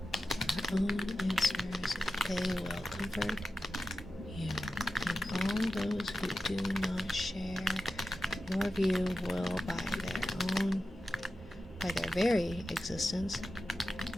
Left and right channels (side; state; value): both; normal; correlation 0.92